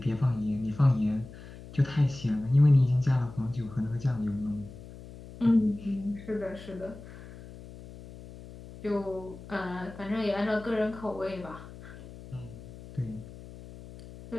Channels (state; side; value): noise; left; hum, 16 dB below the sound